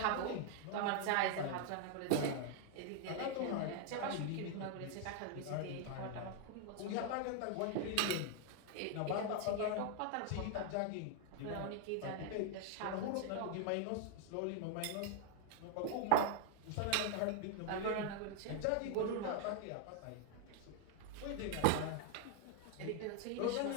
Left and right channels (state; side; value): different; both; correlation 0.00